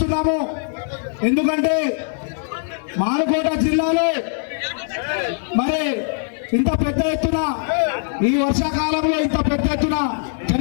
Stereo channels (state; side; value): silent; right; digital silence